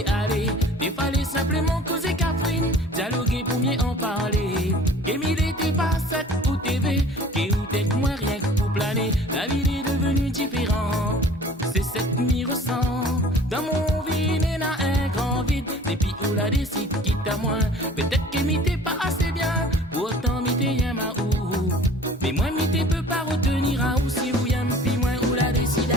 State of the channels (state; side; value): normal; both; correlation 0.47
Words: aller. Il fallait simplement causer Catherine, dialoguer pour mieux en parler. Et mille était pas cette ou TV, qui ou t'es moins rien que pour planer. La vie est devenue différente, c'est cette m'y ressent. Dans mon vie, n'est n'a un grand vide, depuis où la décide quitte à moi. Peut-être que m'y pas assez bien, pourtant m'y t'es y'a ma ou. Mais moi m'y t'es peut pas retenir à ou si ou y'aime puis moi où la décide